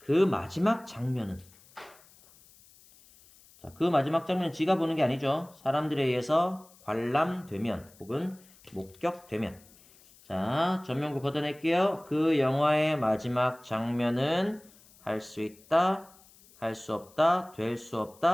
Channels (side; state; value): left; noise; hiss, 26 dB below the sound